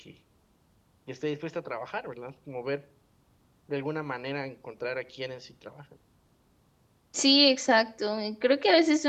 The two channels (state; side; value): identical; both; correlation 1.00